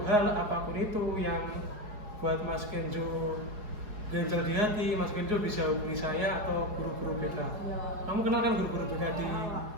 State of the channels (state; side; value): late; left; 4.8 ms